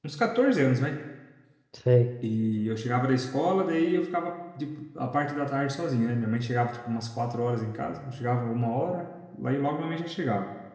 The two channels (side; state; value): both; identical; correlation 1.00